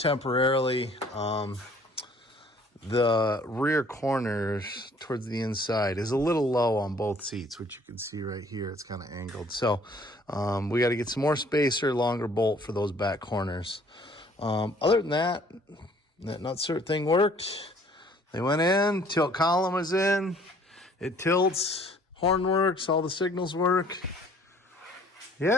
The rear corners towards the inside is a little low on both seats, which you can see right here. It's kind of angled. So we got to get some more spacer, longer bolt for those back corners. Other than that nutsert thing worked. They went in, tilt column was in, it tilts, horn works, all the signals work.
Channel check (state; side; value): normal; both; correlation 0.57